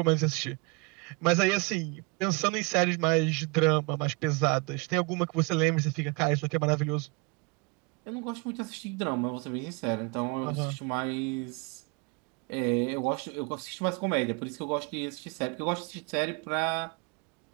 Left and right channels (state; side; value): quieter; left; 29.5 dB